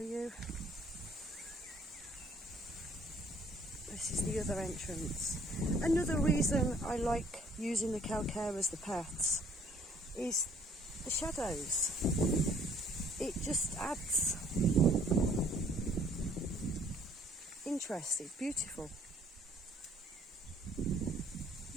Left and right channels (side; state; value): both; normal; correlation 0.59